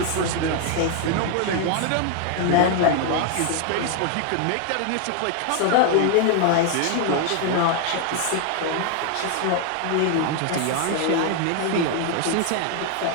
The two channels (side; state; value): both; different; correlation 0.00